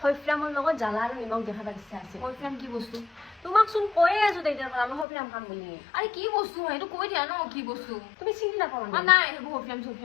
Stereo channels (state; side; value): drops out; right; at 5.1 s